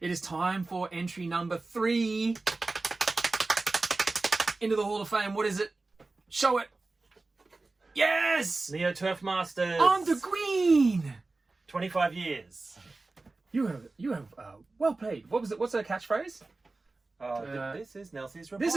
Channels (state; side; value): quieter; left; 3.4 dB